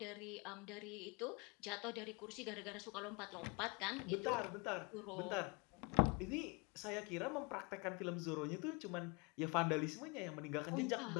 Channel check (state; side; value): quieter; right; 29.9 dB